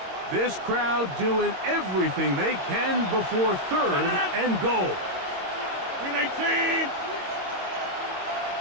This crowd doing everything they can before 3rd and goal. 318.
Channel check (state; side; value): late; left; 22 ms